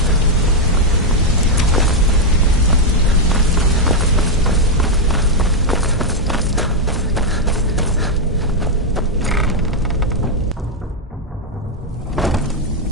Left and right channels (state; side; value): normal; both; correlation 0.00